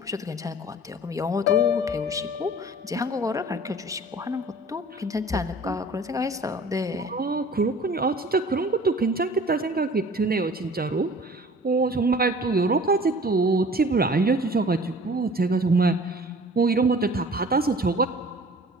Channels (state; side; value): normal; both; correlation 0.47